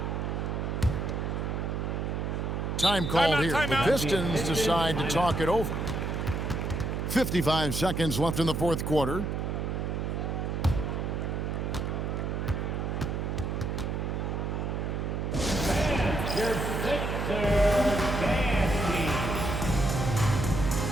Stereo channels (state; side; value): noise; right; hum, 2 dB below the sound